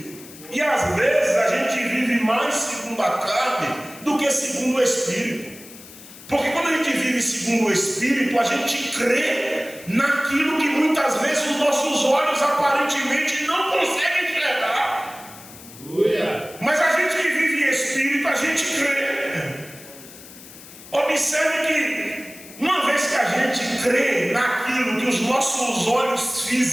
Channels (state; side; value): noise; left; hiss, 18 dB below the sound